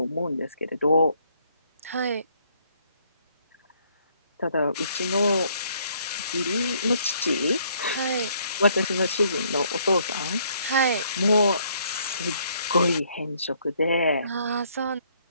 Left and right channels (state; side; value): inverted; both; correlation -0.66